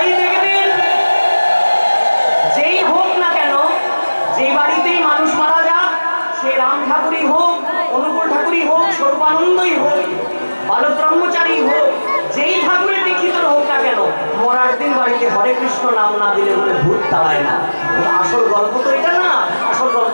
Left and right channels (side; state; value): both; inverted; correlation -1.00